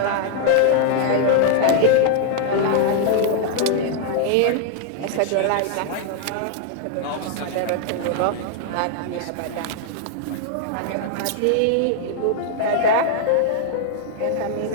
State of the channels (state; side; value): different; both; correlation 0.00